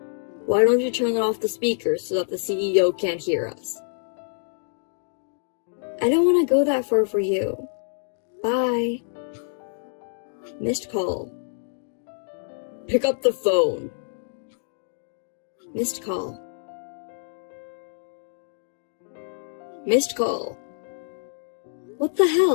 Why don't you turn off the speakers so that the CEO can't hear us? I don't want to go that far for you. Bye. Missed call. Pick up the phone. Missed call. Missed call. What the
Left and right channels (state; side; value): silent; right; digital silence